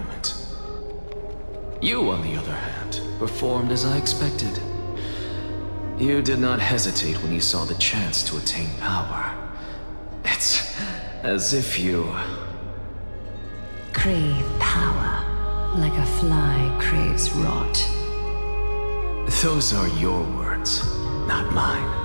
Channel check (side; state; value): both; inverted; correlation -1.00